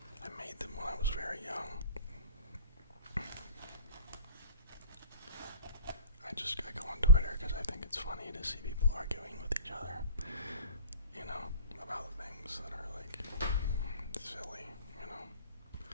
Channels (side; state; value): both; inverted; correlation -0.40